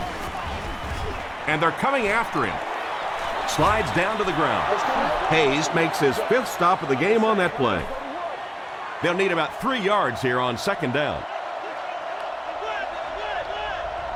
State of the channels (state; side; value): identical; both; correlation 1.00